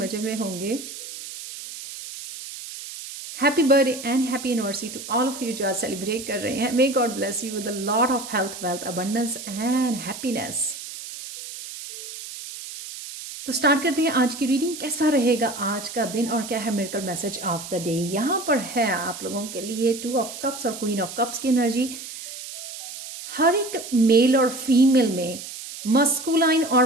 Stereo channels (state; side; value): noise; right; hiss, 11 dB below the sound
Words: में होंगे. Happy birthday and happy anniversary to all of you जो आज सेलिब्रेट कर रहे हैं. May God bless you with a lot of health, wealth, abundance and happiness. तो स्टार्ट करते हैं आज की रीडिंग. कैसा रहेगा आज का दिन और क्या है miracle message of the day. यहाँ पर है आप लोगों के लिए 2 ऑफ कप्स और क्वीन ऑफ कप्स की एनर्जी. हर एक मेल और फीमेल में मस्कुलाइन और